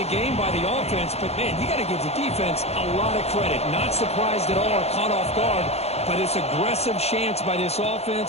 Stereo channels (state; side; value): late; right; 0.30 ms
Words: game by the offense, but man, you got to give the defense a lot of credit. Not surprised at all or caught off guard, but it's aggressive chance by this